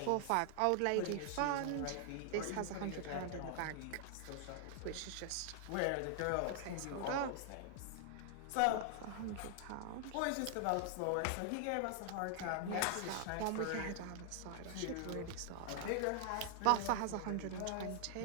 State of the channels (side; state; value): both; different; correlation 0.00